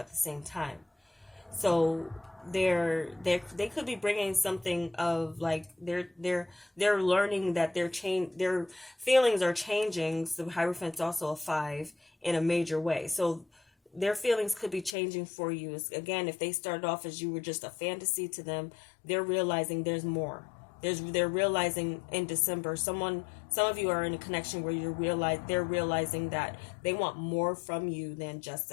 the same time. So they could be bringing something of like they're learning that their feelings are changing. So Hierophant's also a 5 in a major way. So their feelings could be changing for you. Again, if they started off as you were just a fantasy to them, they're realizing there's more. They're realizing in December, some of you are in a connection where they're realizing that they want more from you than just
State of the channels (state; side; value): drops out; right; at 15.0 s